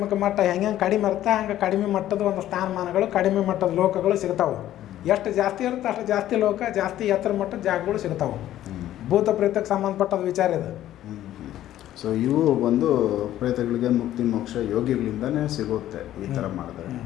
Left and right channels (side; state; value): right; quieter; 12.9 dB